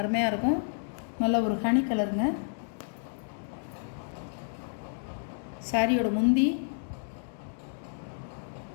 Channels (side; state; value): right; silent; digital silence